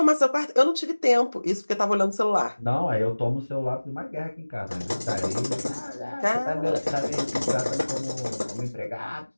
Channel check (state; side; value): inverted; both; correlation -1.00